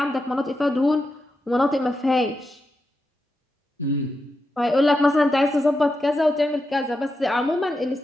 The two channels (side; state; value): both; normal; correlation 0.87